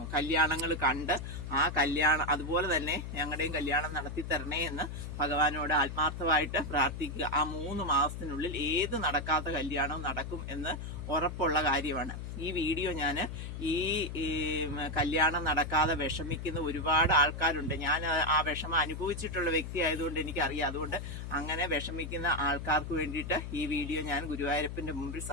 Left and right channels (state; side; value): noise; left; hum, 7 dB below the sound